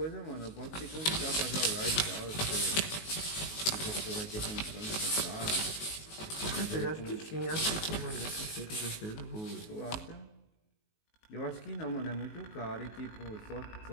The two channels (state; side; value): late; right; 19 ms